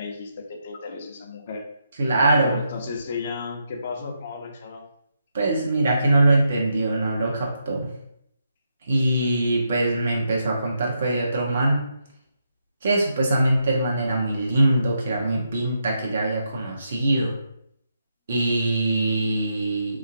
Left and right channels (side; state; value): both; inverted; correlation -0.82